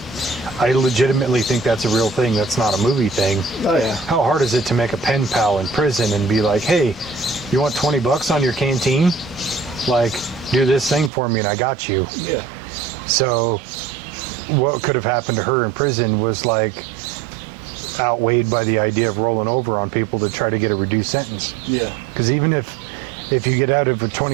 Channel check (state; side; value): drops out; left; at 11.1 s